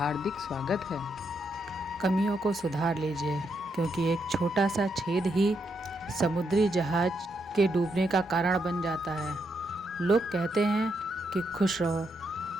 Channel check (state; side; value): normal; both; correlation 0.80